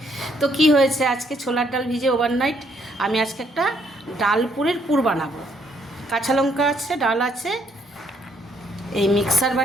তো কি হয়েছে, আজকে ছোলার ডাল ভিজে ওভারনাইট আমি আজকে একটা ডালপুরের পুর বানাবো। কাঁচা লঙ্কা আছে, ডাল আছে, এই মিক্সার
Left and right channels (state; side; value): normal; both; correlation 0.70